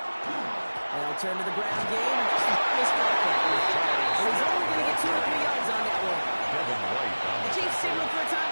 They'll turn to the ground game and just miss contact. But he's only going to get 2 or 3 yards on that one. The Chiefs signal for a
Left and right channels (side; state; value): both; inverted; correlation -1.00